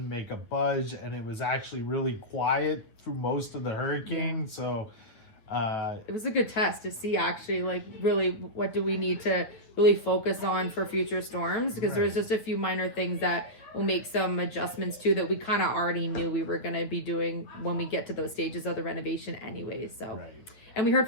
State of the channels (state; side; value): late; right; 9.3 ms